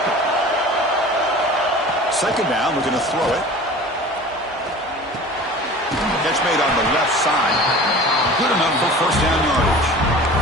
it. Second down, we're going to throw it. Catch made on the left side. Good enough for first down yardage.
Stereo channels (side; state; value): both; normal; correlation 0.40